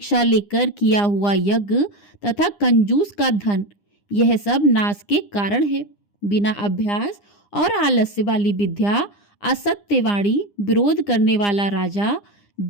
लेकर किया हुआ यज्ञ तथा कंजूस का धन, यह सब नाश के कारण है। बिना अभ्यास और आलस्य वाली विद्या, असत्यवाणी, विरोध करने वाला राजा,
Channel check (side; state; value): right; late; 9.8 ms